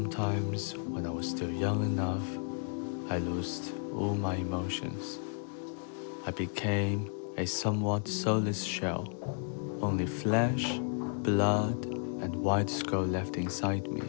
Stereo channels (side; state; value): right; silent; 56 dB below the other